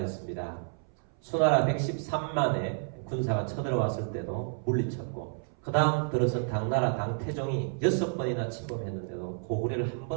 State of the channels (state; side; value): silent; left; 58 dB below the other